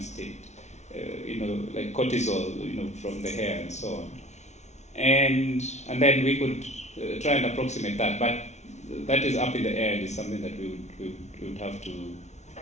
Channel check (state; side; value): late; right; 0.32 ms